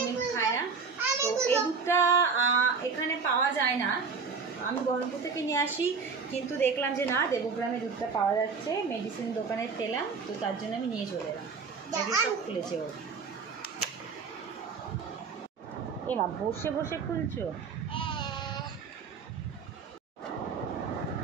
মিল্ক খায় না। তো এই দুধটা এখানে পাওয়া যায় না, আমি বহরমপুর থেকে নিয়ে আসি, কিন্তু দেখলাম যে না, দেবগ্রামে দুধটা পাওয়া যাচ্ছে, মেডিসিন দোকানে পেলাম, তো তার জন্য আমি নিয়ে চলে এলাম। সব খুলেছে ও। এমা বসে বসে খুলছো?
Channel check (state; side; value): quieter; left; 5.2 dB